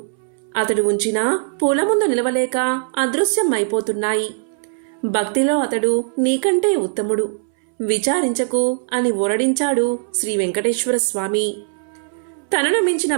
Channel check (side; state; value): left; silent; 66 dB below the other